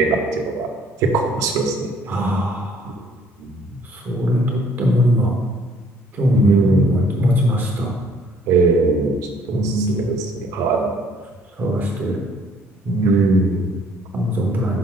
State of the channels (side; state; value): both; normal; correlation 0.61